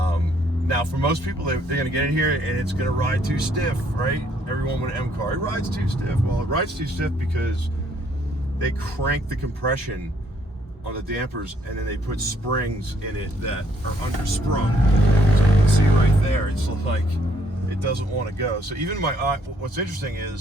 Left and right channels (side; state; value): both; normal; correlation 0.67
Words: Now, for most people, they're going to get in here and it's going to ride too stiff, right? Everyone with an M car, it rides too stiff. Well, it rides too stiff because they crank the compression on the dampers and then they put springs in it that are undersprung. So you can see right there, it's like it doesn't want to go. So even what's interesting